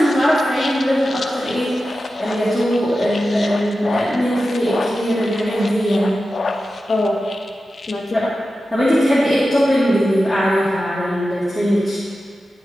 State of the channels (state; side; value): normal; both; correlation 0.93